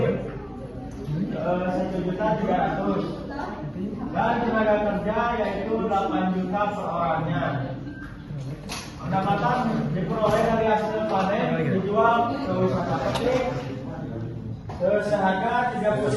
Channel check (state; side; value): identical; both; correlation 1.00